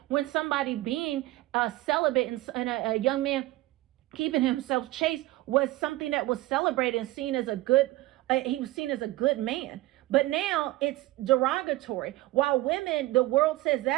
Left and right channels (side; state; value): left; quieter; 17.8 dB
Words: when somebody being celibate and a young man keeping himself chaste was something that was celebrated and seen as a good, he was seen as a good man. But now it's derogatory. While women, the world says